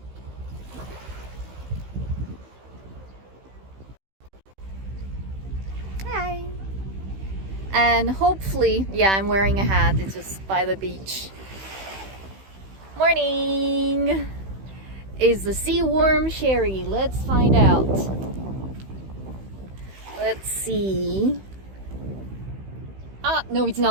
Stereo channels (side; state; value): left; late; 16 ms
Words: Hi. And hopefully, yeah, I'm wearing a hat. It's just by the beach. Morning. Is the sea warm, Sherry? Let's find out. Let's see. No, it's